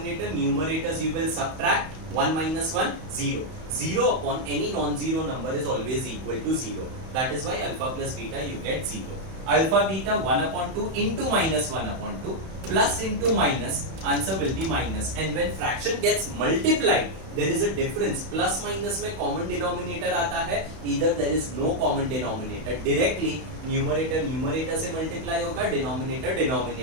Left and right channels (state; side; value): late; left; 31 ms